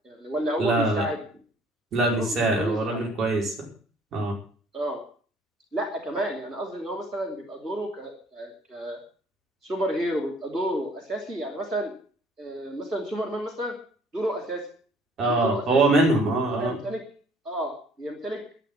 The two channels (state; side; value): normal; both; correlation 0.57